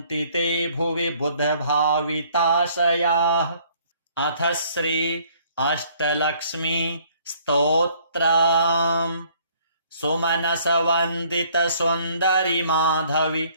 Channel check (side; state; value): both; inverted; correlation -0.61